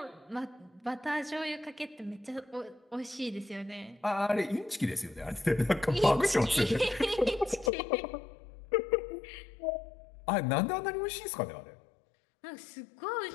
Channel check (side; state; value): right; drops out; at 7.7 s